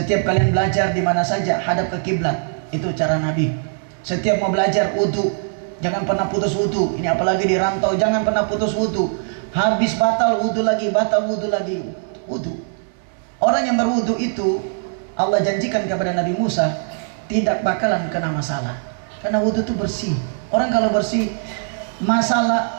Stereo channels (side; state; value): left; silent; 61 dB below the other